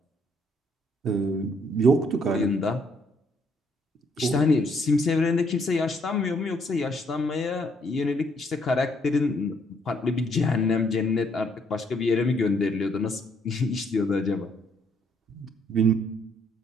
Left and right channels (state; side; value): normal; both; correlation 0.69